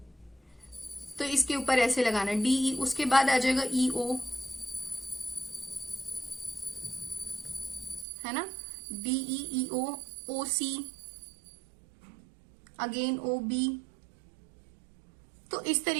तो इसके ऊपर ऐसे लगाना डीई। उसके बाद आ जाएगा ईओ, है ना, डीईईओ, ओसी, अगेन ओ बी। तो इस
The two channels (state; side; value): drops out; left; at 8.1 s